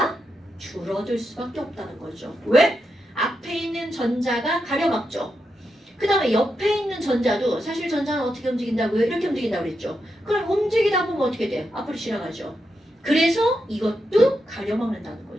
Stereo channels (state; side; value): normal; both; correlation 0.85